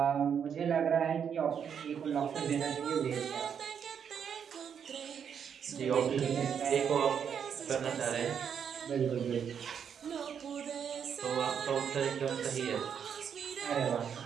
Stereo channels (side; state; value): left; quieter; 7.7 dB